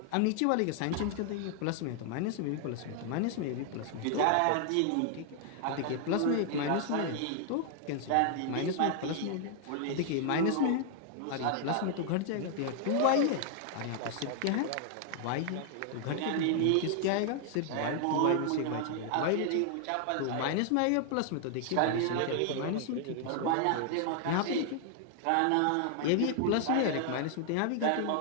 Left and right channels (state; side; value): different; both; correlation 0.00